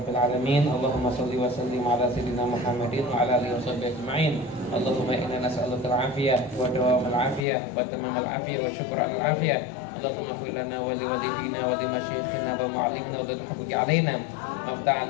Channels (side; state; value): right; drops out; at 7.5 s